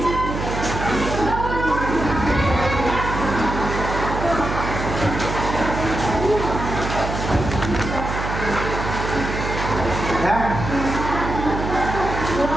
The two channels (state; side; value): noise; right; hum, 5 dB below the sound